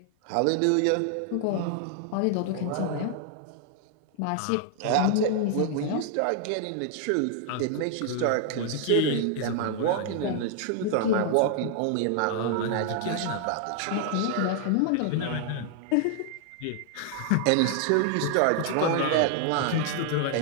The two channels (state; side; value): different; both; correlation 0.00